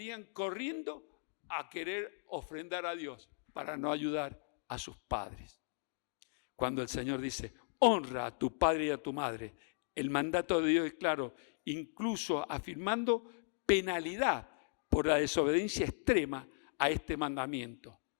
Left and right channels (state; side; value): silent; right; digital silence